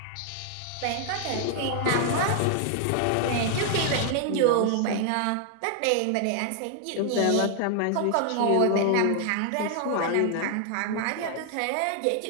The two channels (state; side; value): different; both; correlation 0.00